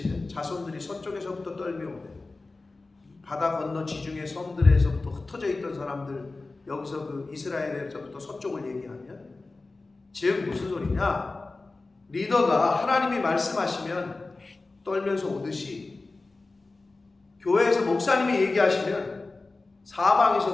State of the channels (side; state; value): right; quieter; 3.5 dB